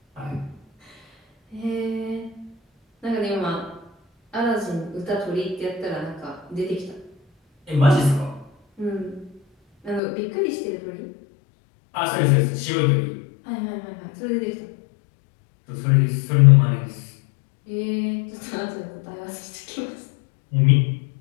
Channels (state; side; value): drops out; right; at 10.0 s